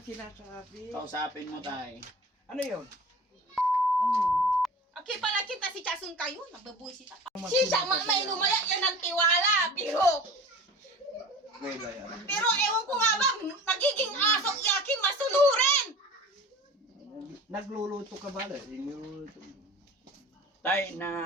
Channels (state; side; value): normal; both; correlation 0.39